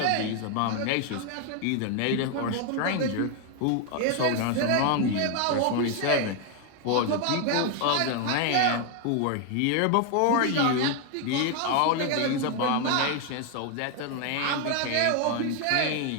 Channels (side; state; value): both; different; correlation 0.01